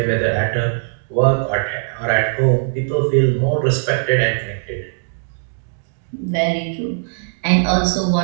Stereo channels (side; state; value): left; silent; 66 dB below the other